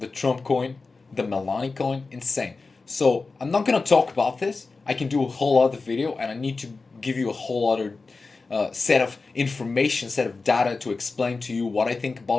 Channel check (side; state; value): right; quieter; 4.0 dB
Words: Trump coin, the Melania coin, insane. So I'm not gonna talk about this. I can do a whole other video, and I need to give you a whole other set of information, set of data to explain to you what I think